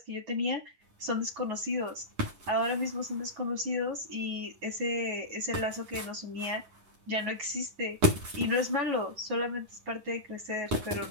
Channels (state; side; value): late; left; 11 ms